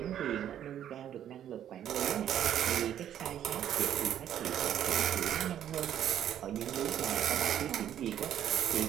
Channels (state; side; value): quieter; left; 10.5 dB